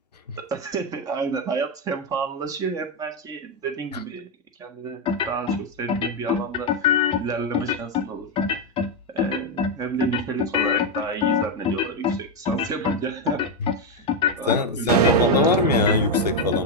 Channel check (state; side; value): normal; both; correlation 0.05